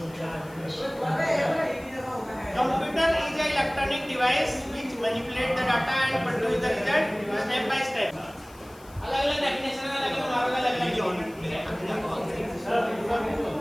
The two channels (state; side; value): noise; left; hiss, 25 dB below the sound